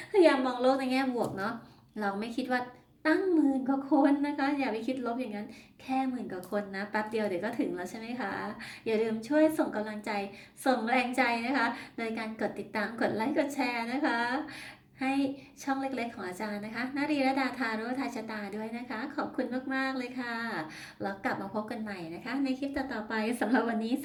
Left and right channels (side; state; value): both; identical; correlation 1.00